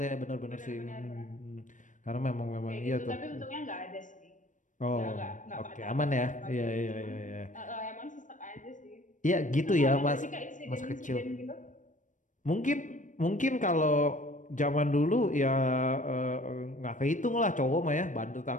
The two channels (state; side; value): late; right; 0.37 ms